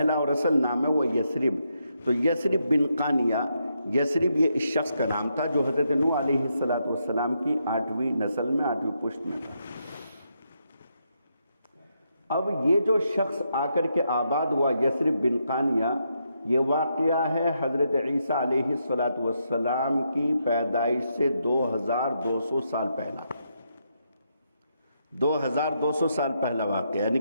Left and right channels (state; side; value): inverted; both; correlation -0.80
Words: اور اصل نام ہے، وہ یثرب۔ تو یثرب بن قانیہ، یثرب یہ اس شخص کا نام تھا جو حضرت نوح علیہ السلام کی 8ویں نسل میں 8ویں پشت میں تھا۔ اب یہ جو شخص آ کر کے آباد ہوا یثرب بن قانیہ، یہ واقعہ ہے حضرت عیسیٰ علیہ السلام کی پیدائش سے 2200 سال پہلا، 2200 سال پہلا واقعہ، یعنی